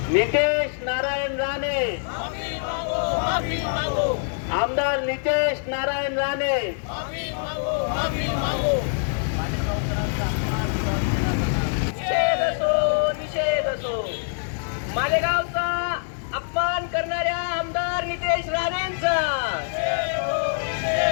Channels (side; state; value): right; silent; digital silence